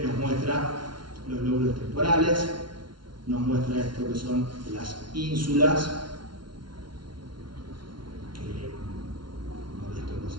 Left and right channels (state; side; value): late; left; 0.72 ms